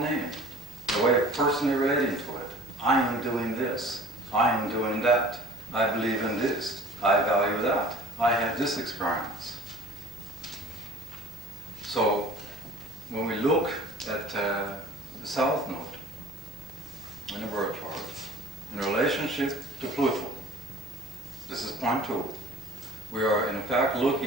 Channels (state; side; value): normal; both; correlation 0.46